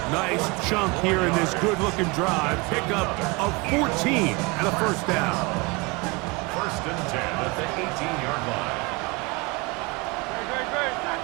Nice chunk here in this good-looking drive. Pickup of 14 and a first down. 1st and 10 at the 18-yard line.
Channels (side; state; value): left; quieter; 26.4 dB